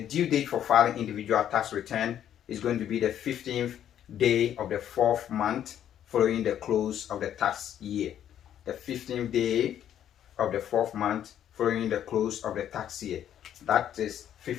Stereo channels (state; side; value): quieter; right; 10.4 dB